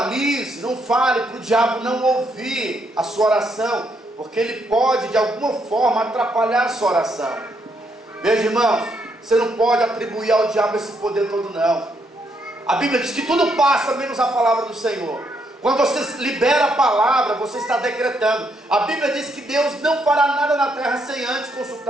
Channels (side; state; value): both; normal; correlation 0.75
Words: não fale para o diabo não ouvir a sua oração, porque ele pode de alguma forma atrapalhar a sua oração. Veja, irmãos, você não pode atribuir ao diabo esse poder todo, não. A Bíblia diz que tudo passa menos a palavra do Senhor. Quando você libera a palavra, você está decretando. A Bíblia diz que Deus não fará nada na terra sem antes